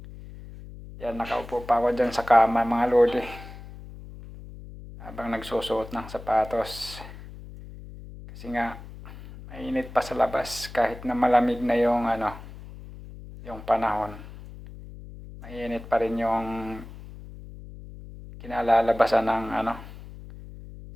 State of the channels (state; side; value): noise; left; hum, 15 dB below the sound